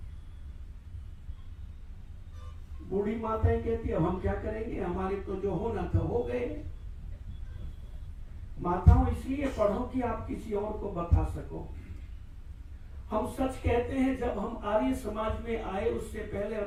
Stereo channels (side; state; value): both; identical; correlation 1.00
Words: बूढ़ी माताएं कहती है हम क्या करेंगे, हमारे तो जो होना था हो गए। माताओं इसलिए पढ़ो कि आप किसी और को बता सको। हम सच कहते हैं, जब हम आर्य समाज में आए उससे पहले